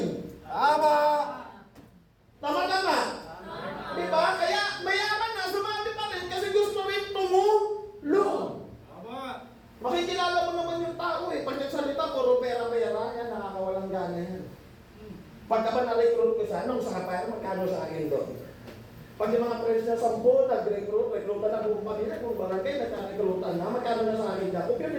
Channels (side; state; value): both; identical; correlation 1.00